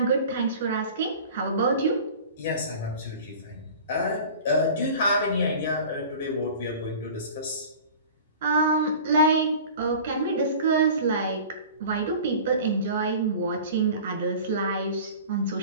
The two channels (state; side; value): inverted; both; correlation -0.40